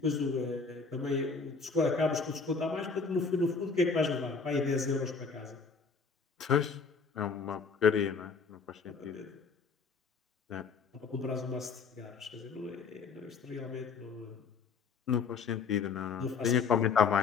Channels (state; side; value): quieter; right; 5.1 dB